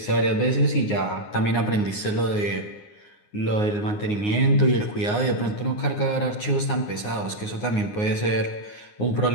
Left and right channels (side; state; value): right; late; 9.6 ms